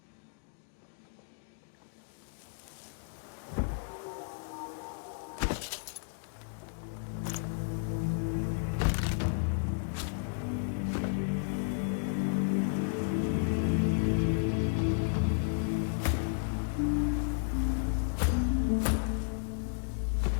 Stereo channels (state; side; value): silent; right; digital silence